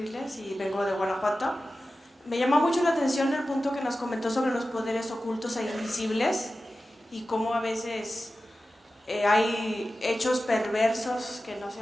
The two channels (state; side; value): normal; both; correlation 0.94